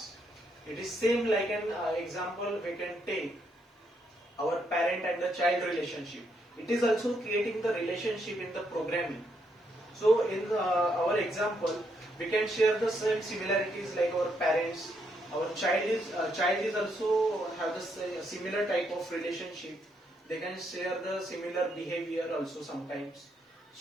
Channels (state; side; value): normal; both; correlation 0.76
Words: It is same like an example we can take our parent and the child relationship. It is also creating the relationship in the programming. So in our example, we can share the same similarities like our parents. Our child is also have the similar type of relationship. They can share the similar behavior also sometimes.